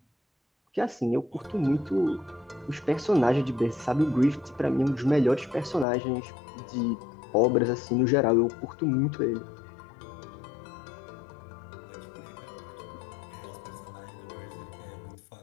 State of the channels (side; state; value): right; drops out; at 5.9 s